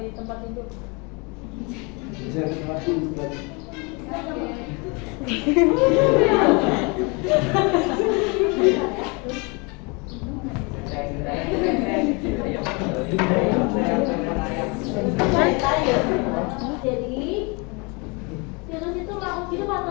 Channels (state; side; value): quieter; right; 30.1 dB